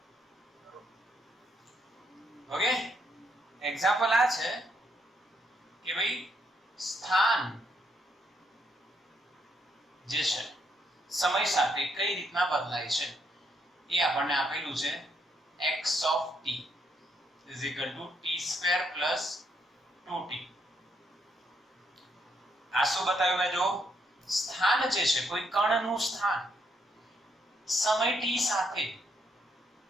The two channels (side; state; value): both; normal; correlation 0.75